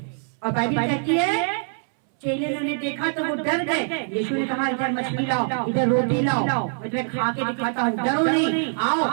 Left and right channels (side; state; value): left; silent; 60 dB below the other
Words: और बाइबल कहती है चेले ने देखा तो वो डर गए। यीशु ने कहा इधर मछली लाओ, इधर रोटी लाओ, मैं खा के दिखाता हूँ, डरो नहीं,